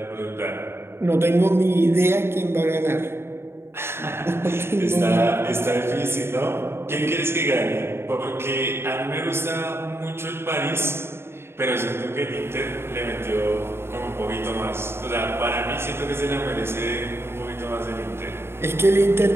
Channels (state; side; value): late; left; 0.12 ms